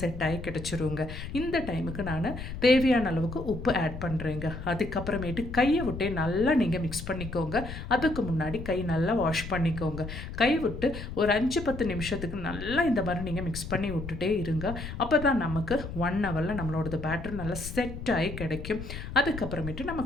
செட் ஆகி கிடச்சிருங்க. இந்த டைமுக்கு நான் தேவையான அளவுக்கு உப்பு ஆட் பண்ணுறேங்க. அதுக்கப்புறமேட்டு கையை விட்டே நல்லா நீங்கள் மிக்ஸ் பண்ணிக்கோங்க. அதுக்கு முன்னாடி கை நல்லா வாஷ் பண்ணிக்கோங்க. கை விட்டு ஒரு 5-10 நிமிஷத்துக்கு நல்லா இந்த மாதிரி நீங்கள் மிக்ஸ் பண்ணி விட்டுட்டே இருங்க. அப்போ தான் நமக்கு 1 ஹவரில் நம்மளோட பேட்டர் நல்லா செட் ஆகி கிடைக்கும். அதுக்கப்புறமேட்டு நம்ம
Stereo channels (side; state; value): left; noise; rumble, 9 dB below the sound